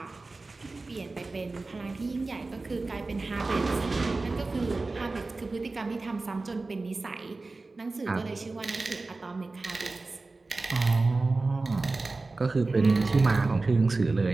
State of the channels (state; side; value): quieter; left; 3.5 dB